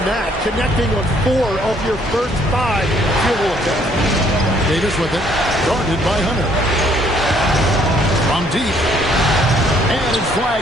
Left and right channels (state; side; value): normal; both; correlation 0.64